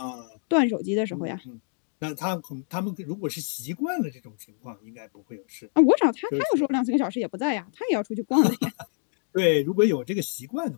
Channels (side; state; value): right; silent; 61 dB below the other